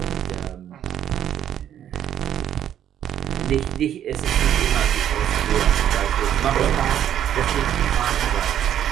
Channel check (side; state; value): left; quieter; 10.4 dB